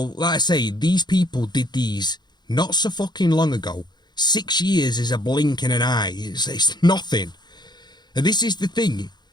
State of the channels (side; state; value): right; late; 0.21 ms